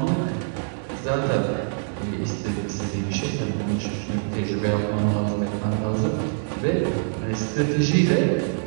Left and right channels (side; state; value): left; silent; 62 dB below the other